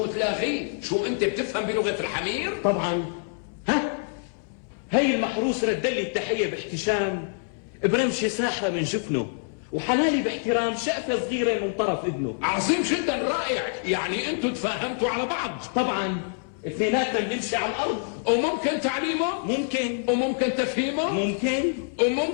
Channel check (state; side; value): silent; right; 61 dB below the other